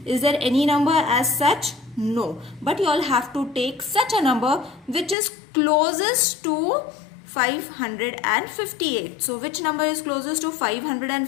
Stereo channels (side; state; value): right; drops out; at 5.2 s